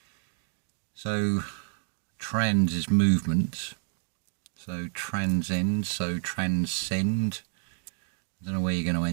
So trans is movement, so transcend, so transcend. I don't know where you're going to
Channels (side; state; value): left; silent; digital silence